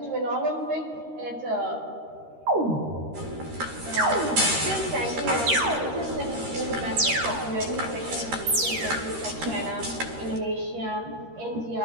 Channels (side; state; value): left; late; 13 ms